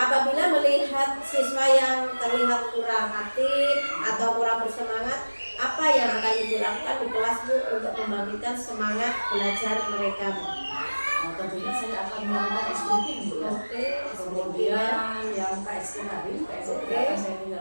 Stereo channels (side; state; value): both; inverted; correlation -1.00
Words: melihat siswa yang terlihat kurang aktif atau kurang bersemangat, apa yang akan Ibu lakukan di kelas Bu untuk membangkitkan semangat belajar mereka Bu? Tentunya saya akan melakukan speaking Bu ya. Oke. Kemudian yang KSK tadi, KSK akan saya